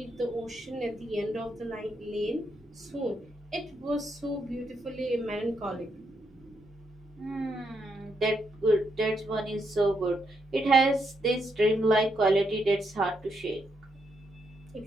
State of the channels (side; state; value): both; normal; correlation 0.79